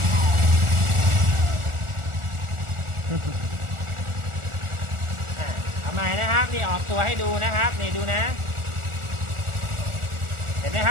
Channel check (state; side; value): late; left; 1.4 ms